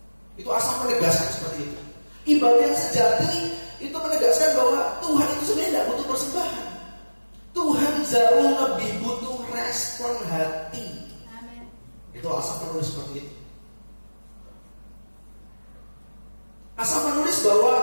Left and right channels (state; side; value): inverted; both; correlation -1.00